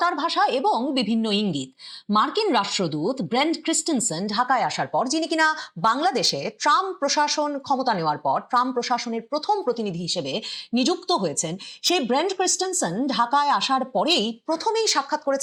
ভাষা এবং বিভিন্ন ইঙ্গিত। মার্কিন রাষ্ট্রদূত ব্রেন্ট ক্রিস্টেনসেন ঢাকায় আসার পর, যিনি কিনা বাংলাদেশে ট্রাম্প প্রশাসন ক্ষমতা নেওয়ার পর ট্রাম্প প্রশাসনের প্রথম প্রতিনিধি হিসেবে নিযুক্ত হয়েছেন, সেই ব্রেন্ট ক্রিস্টেনসেন ঢাকায় আসার পরেই প্রথমেই সাক্ষাৎ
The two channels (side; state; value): both; identical; correlation 1.00